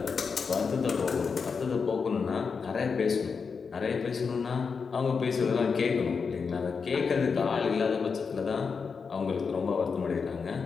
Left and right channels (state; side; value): quieter; right; 5.5 dB